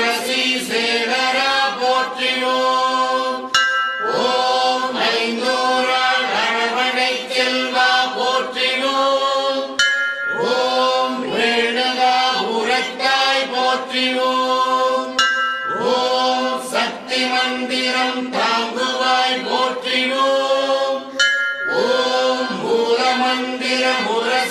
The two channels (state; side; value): identical; both; correlation 1.00